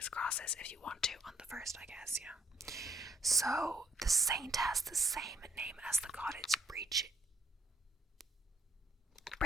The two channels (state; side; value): normal; both; correlation 0.67